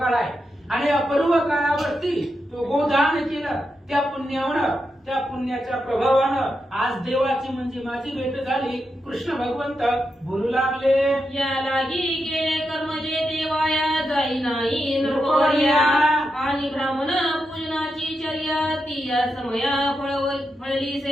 आहे आणि अपर्व काळावरती तो गोदान केलं, त्या पुण्यावर, त्या पुण्याच्या प्रभावानं आज देवाची म्हणजे माझी भेट झाली. कृष्ण भगवंत बोलू लागले. या लागी केले कर्म जे देवाया जाई नाही नृपवर्या, आणि ब्राह्मण पूजनाची चर्या ती या समया फळली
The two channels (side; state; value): both; normal; correlation 0.86